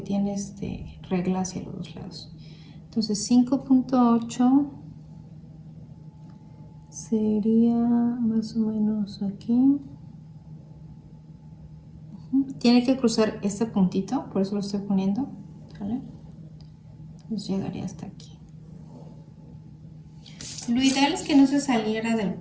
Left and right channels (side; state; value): both; identical; correlation 1.00